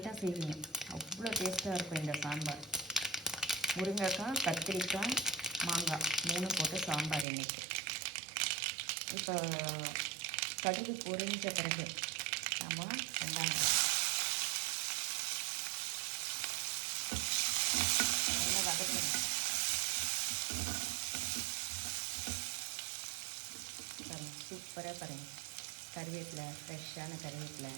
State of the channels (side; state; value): left; drops out; at 7.2 s